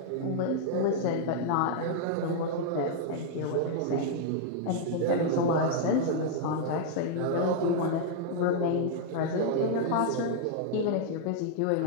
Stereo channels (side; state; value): both; different; correlation -0.01